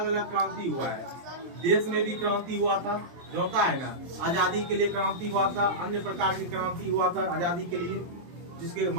अलग क्रांति हुआ है। देश में भी क्रांति हुआ था, जो होता है ना, आजादी के लिए क्रांति हुआ था। अन्य प्रकार की क्रांति हुआ था आजादी के लिए, जिसके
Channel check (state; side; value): late; left; 23 ms